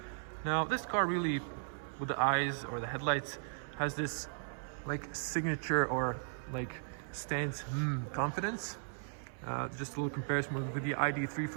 now this car really, with the eyes or the headlights, has this like signature or like stands confidence. Just a little comparison with the ID3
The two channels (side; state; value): left; silent; 53 dB below the other